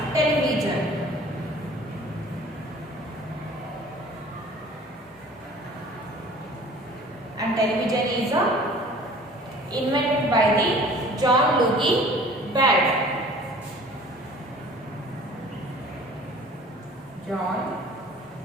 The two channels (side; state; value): both; normal; correlation 0.48